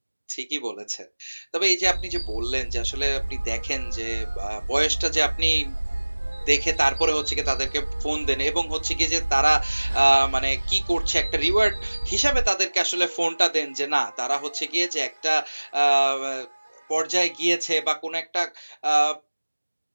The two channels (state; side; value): inverted; both; correlation -1.00